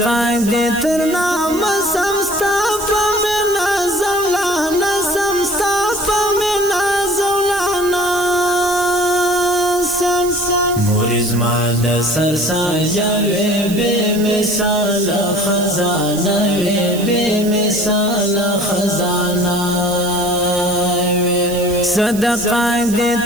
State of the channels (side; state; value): right; noise; hiss, 13 dB below the sound